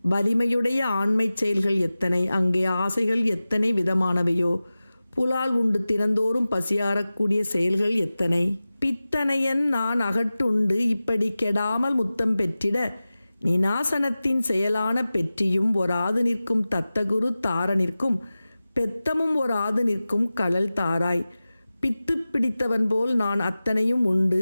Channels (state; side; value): inverted; both; correlation -0.96